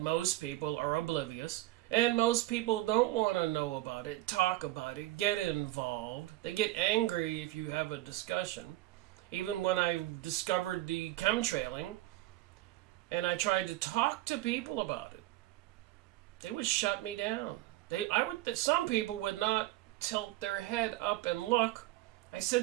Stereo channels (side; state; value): left; quieter; 17.1 dB